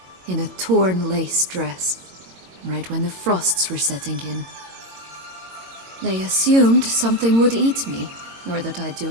in a torn lace dress, right when the frosts were setting in. They assumed something would eat me, or that I'd do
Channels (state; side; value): late; left; 22 ms